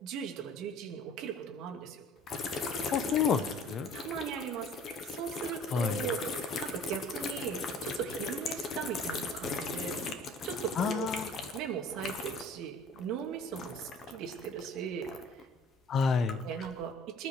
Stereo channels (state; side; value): normal; both; correlation 0.50